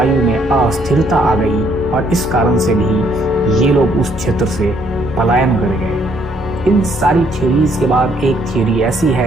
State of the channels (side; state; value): both; normal; correlation 0.67